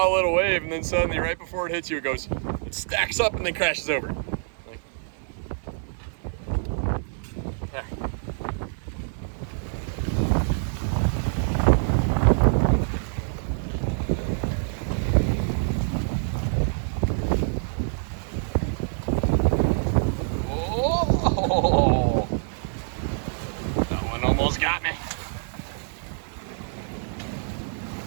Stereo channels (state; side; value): silent; left; digital silence